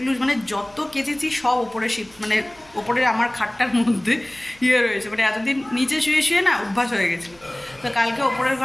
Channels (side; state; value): right; noise; hum, 28 dB below the sound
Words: মানে যত কেচেছি সব ওপরে মানে ওপরের আমার খাটটার মধ্যে রয়েছে, মানে এতদিন নিচে শুয়ে শুয়ে না অভ্যাস হয়ে গেছে। তো কালকে ওপরের